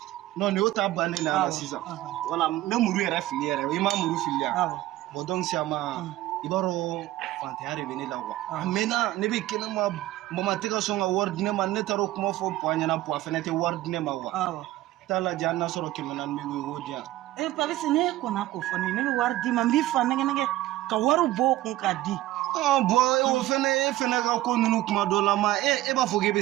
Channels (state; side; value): quieter; left; 15.7 dB